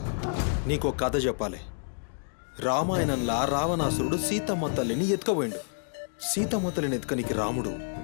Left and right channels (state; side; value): silent; right; digital silence